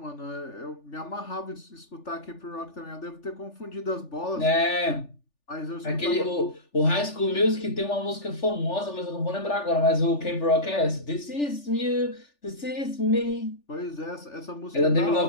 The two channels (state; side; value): late; right; 3.4 ms